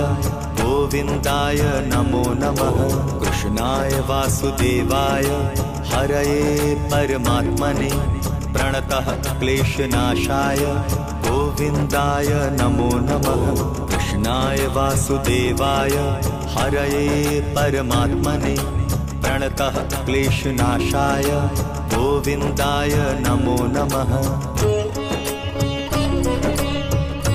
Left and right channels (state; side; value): identical; both; correlation 1.00